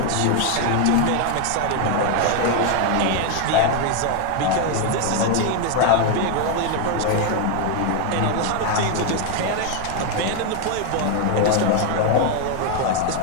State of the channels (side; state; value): both; different; correlation 0.01